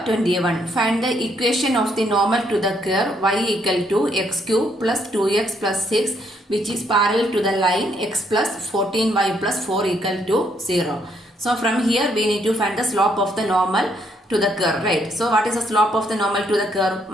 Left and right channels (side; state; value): both; normal; correlation 0.72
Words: 21. Find the equation of the normal to the curve y equal to x cube plus 2x plus 6 which is parallel to the line x plus 14y plus 4 equal to 0. So from here we need to find the slope of the normal to the curve, right? So what is the slope of the normal to the curve?